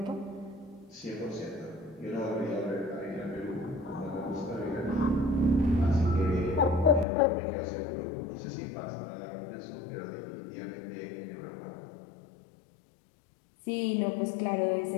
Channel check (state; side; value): drops out; right; at 7.1 s